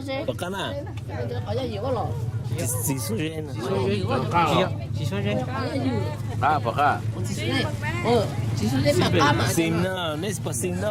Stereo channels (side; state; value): both; identical; correlation 1.00